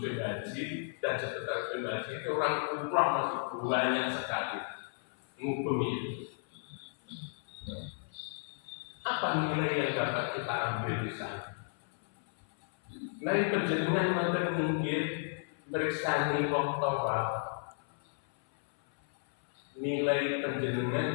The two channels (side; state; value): right; silent; 55 dB below the other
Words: Haji dan sekitar haji itu orang umrah masih banyak sekali ngubumi. Apa nilai yang dapat kita ambil di sana? Nilai penjenengan wonten minggir bersani wong tawaf. Nilai